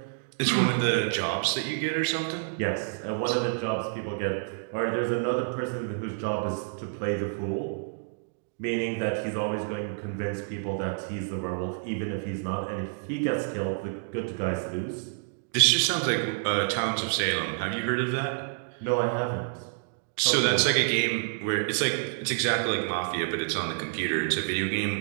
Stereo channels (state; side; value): silent; left; digital silence